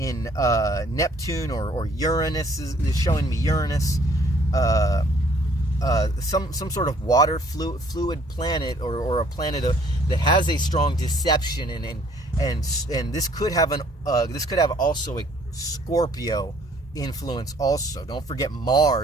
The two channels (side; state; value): both; normal; correlation 0.60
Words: Neptune, or Uranus is showing me Uranus. Some sort of water fluid planet, or a planet that has a strong deception, and this could have also a Scorpio influence also. Don't forget